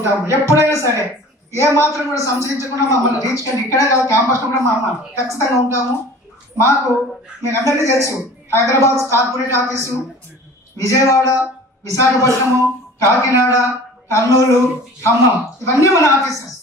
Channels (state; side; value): normal; both; correlation 0.44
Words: ఎప్పుడైనా సరే ఏ మాత్రం కూడా సంశయించకుండా మమ్మల్ని రీచ్ కండి. ఇక్కడే కాదు క్యాంపస్లో కూడా మమ్మల్ని ఖచ్చితంగా ఉంటాము. మాకు మీకు అందరికీ తెలుసు హైదరాబాద్ కార్పొరేట్ ఆఫీసు, విజయవాడ, విశాఖపట్నము, కాకినాడ, కర్నూలు, ఖమ్మం ఇవన్నీ మన ఆఫీసెస్.